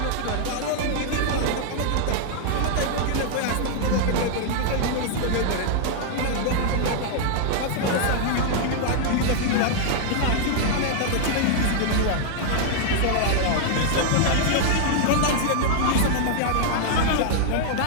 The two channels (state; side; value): different; both; correlation 0.00